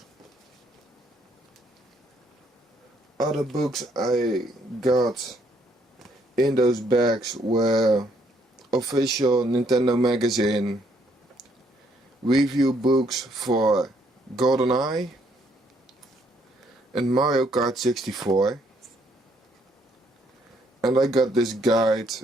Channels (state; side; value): normal; both; correlation 0.69